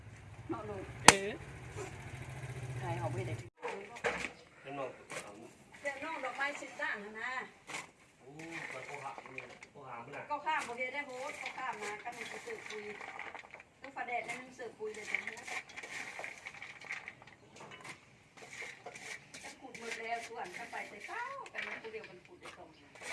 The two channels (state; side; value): identical; both; correlation 1.00